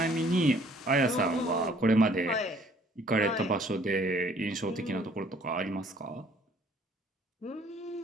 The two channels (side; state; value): both; normal; correlation 0.59